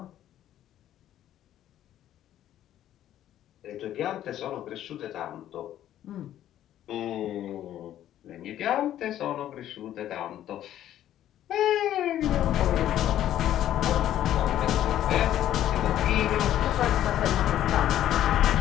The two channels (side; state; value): right; quieter; 12.0 dB